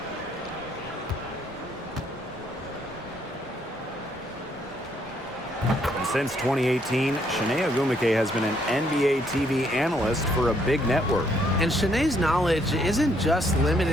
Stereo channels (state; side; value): normal; both; correlation 0.70